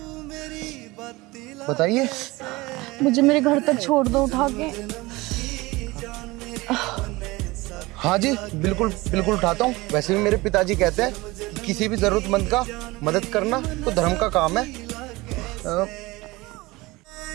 बताइए। मुझे मेरे घर तक छोड़ दो उठा के। हाँ जी, बिल्कुल बिल्कुल उठाता हूँ। वैसे भी मेरे पिताजी कहते हैं कि किसी भी जरूरतमंद का मदद करना तो धर्म का काम है।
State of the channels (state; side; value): quieter; left; 21.6 dB